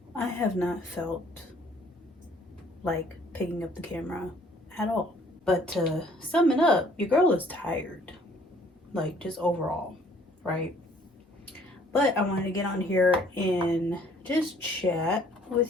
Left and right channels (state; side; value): normal; both; correlation 0.59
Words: I have not felt like picking up the camera at all. But to sum it up, your girl is tired, like just overall, right? But I wanted to get on here and just chat